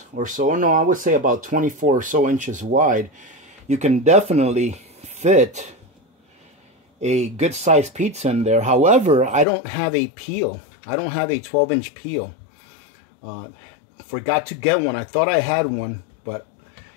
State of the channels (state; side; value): drops out; right; at 9.5 s